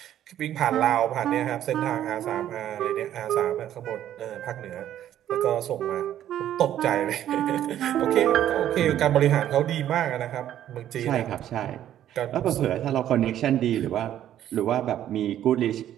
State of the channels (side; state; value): left; quieter; 11.5 dB